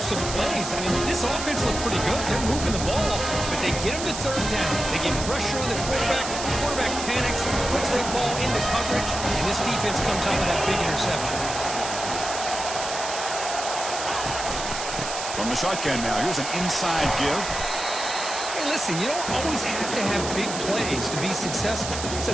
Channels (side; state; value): right; noise; hiss, 6 dB below the sound